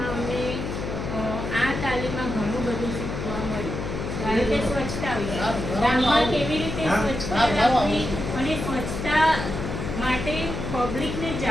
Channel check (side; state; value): left; noise; hum, 5 dB below the sound